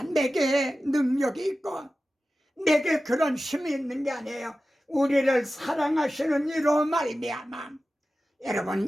내게 능력이 있고 내게 그런 힘이 있는 게 아니에요. 우리를 사랑하시는 이로 말미암아. 여러분,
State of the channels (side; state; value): both; normal; correlation 0.95